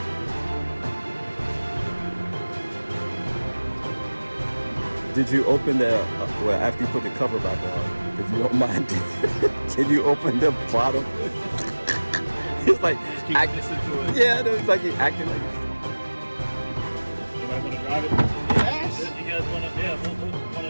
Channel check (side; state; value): both; inverted; correlation -1.00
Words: Did you open the, well, after you put the cover back on, if you don't mind, can you open the bottom? It's like, just keep listening to it. Yeah, it's like you're acting like it. You might want to drive it? Yes! You guys want to, yeah, we'll